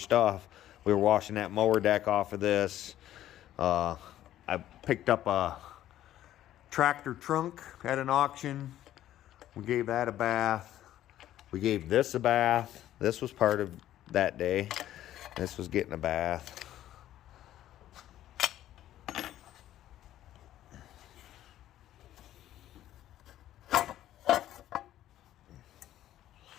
We were washing that mower deck off of this. I picked up a tractor trunk at an auction. We gave that a bath. We gave this a bath. This was part of that day. This was getting a bath.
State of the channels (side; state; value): right; quieter; 12.8 dB